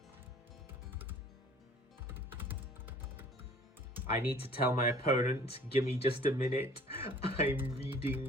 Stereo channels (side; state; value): both; normal; correlation 0.51